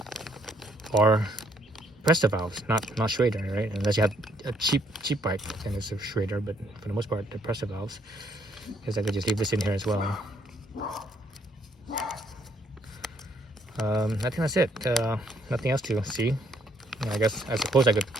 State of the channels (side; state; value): both; normal; correlation 0.68